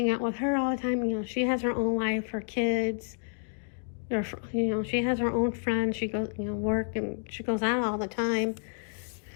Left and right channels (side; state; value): right; silent; 58 dB below the other